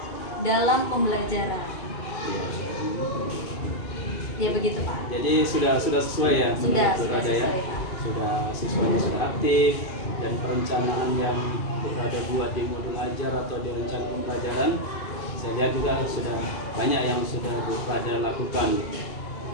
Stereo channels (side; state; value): right; late; 2.5 ms